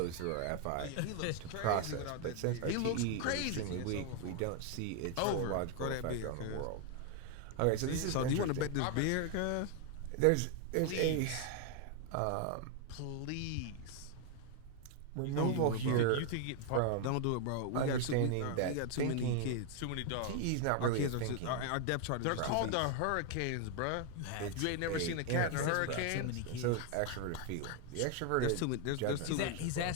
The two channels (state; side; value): different; both; correlation 0.00